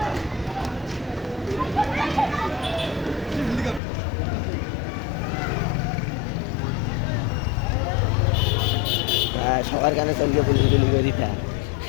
সবার কানে চলকে পুলিশ গুলি করে দিতা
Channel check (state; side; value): drops out; right; at 3.8 s